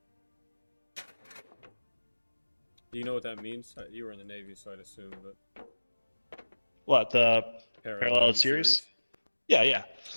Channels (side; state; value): both; inverted; correlation -1.00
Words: Do you know what that means? You were in the Navy, so I'd assume, but... What, the parallel series? Yeah, yeah.